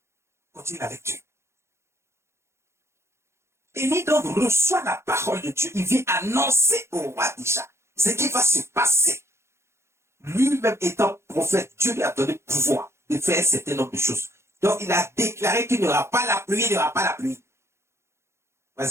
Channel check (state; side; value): late; left; 0.13 ms